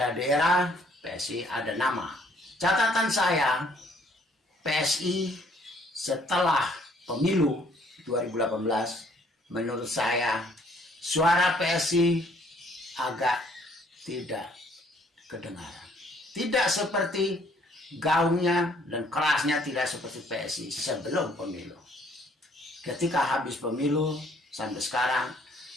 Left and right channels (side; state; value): both; normal; correlation 0.63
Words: PSI ada nama. Catatan saya, PSI setelah pemilu 2018, menurut saya suara PSI agak tidak kedengaran. Tidak seperti gaungnya dan kerasnya, tidak seperti PSI sebelum pemilu. Ketika habis pemilu sampai sekarang,